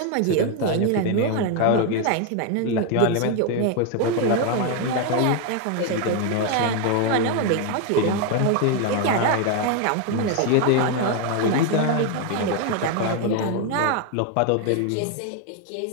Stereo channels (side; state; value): both; different; correlation 0.01